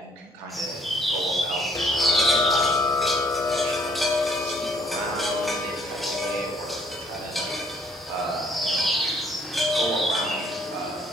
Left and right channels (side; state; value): both; normal; correlation 0.63